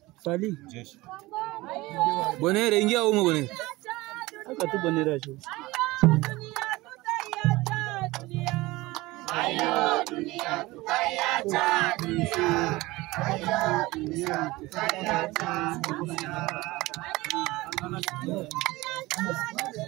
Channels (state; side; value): quieter; left; 20.3 dB